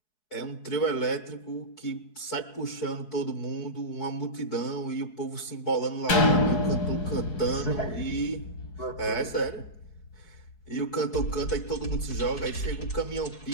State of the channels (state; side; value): late; right; 4.7 ms